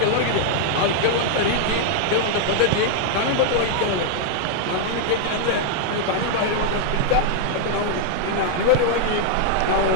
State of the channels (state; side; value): different; both; correlation -0.01